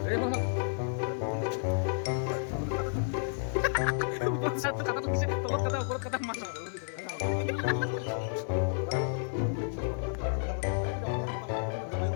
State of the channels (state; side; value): silent; right; 57 dB below the other